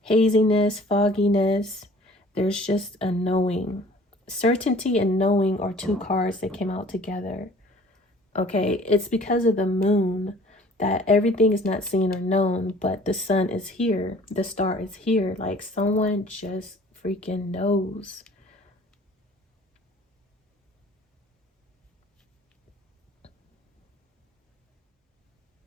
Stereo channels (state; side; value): normal; both; correlation 0.50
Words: haziness, fogginess. There's just a knowing. Certainty and knowing are two cards that came out together. Okay, it's because of the moon that everything is not seen or known, but the sun is here, the star is here. Like, someone just freaking knows.